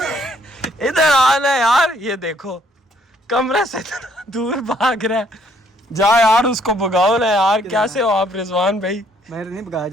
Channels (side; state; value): both; normal; correlation 0.66